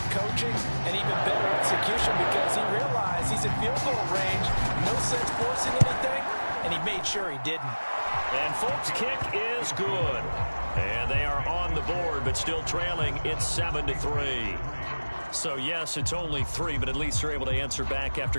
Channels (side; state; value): both; inverted; correlation -1.00